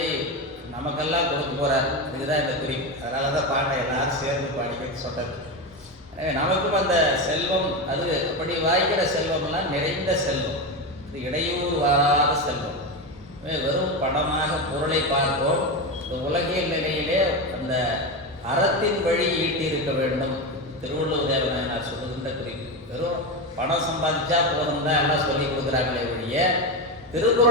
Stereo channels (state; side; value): normal; both; correlation 0.16